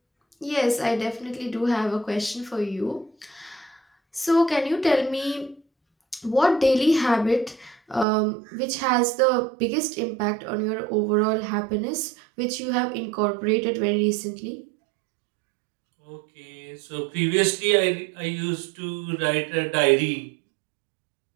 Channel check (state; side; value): drops out; left; at 8.1 s